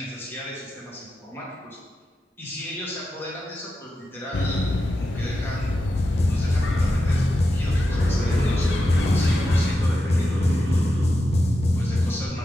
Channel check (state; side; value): normal; both; correlation 0.89